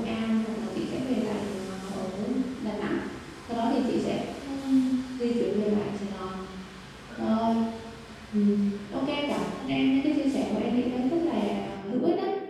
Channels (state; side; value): identical; both; correlation 1.00